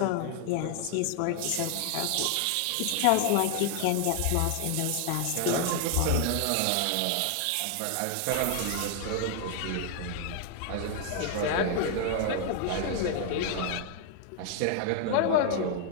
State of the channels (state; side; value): different; both; correlation 0.00